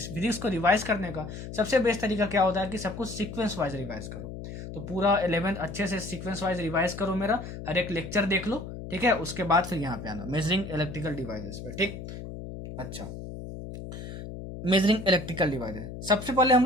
को रिवाइज करने का सबसे बेस्ट तरीका क्या होता है कि सब कुछ सीक्वेंस वाइज रिवाइज करो। तो पूरा 11th अच्छे से सीक्वेंस वाइज रिवाइज करो, मेरा हर एक लेक्चर देख लो। ठीक है, उसके बाद फिर यहाँ पे आना मेजरिंग इलेक्ट्रिकल डिवाइसेस पे। ठीक, अच्छा, मेजरिंग इलेक्ट्रिकल डिवाइसेस सबसे पहले हम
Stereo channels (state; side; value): noise; left; hum, 10 dB below the sound